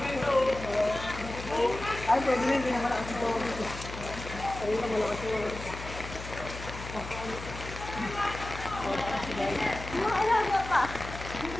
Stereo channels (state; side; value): noise; left; hum, 10 dB below the sound